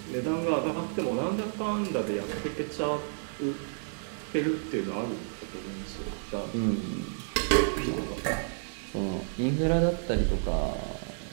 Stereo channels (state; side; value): silent; left; digital silence